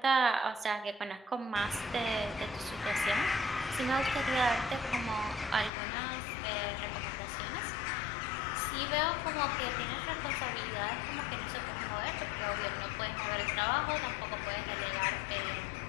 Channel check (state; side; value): drops out; right; at 5.7 s